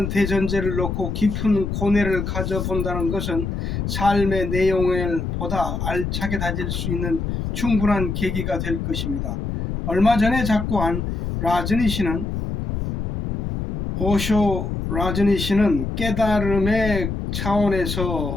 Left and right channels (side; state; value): left; noise; rumble, 3 dB below the sound